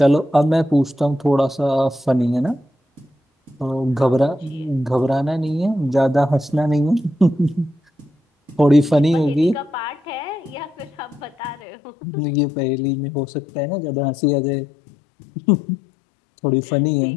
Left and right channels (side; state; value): right; drops out; at 11.6 s